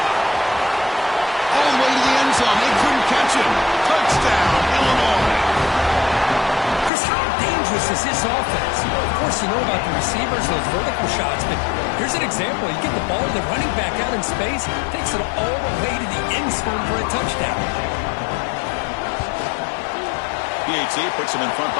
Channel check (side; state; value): right; drops out; at 6.9 s